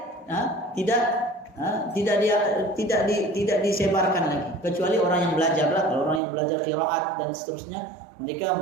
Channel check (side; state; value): left; drops out; at 6.2 s